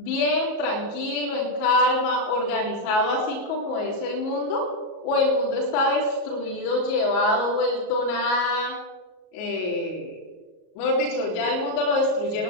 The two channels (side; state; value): right; late; 37 ms